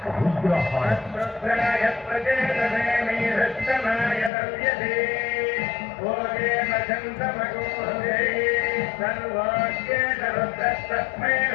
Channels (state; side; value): drops out; right; at 4.3 s